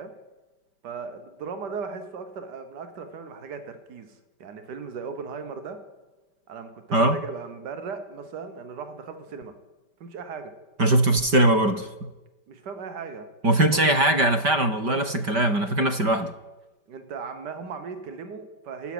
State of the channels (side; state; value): left; late; 5.1 ms